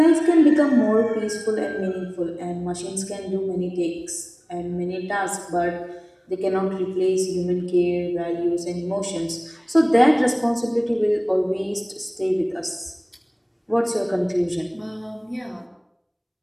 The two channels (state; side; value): identical; both; correlation 1.00